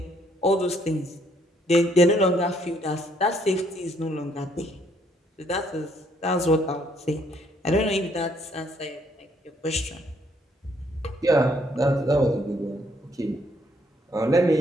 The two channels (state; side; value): normal; both; correlation 0.68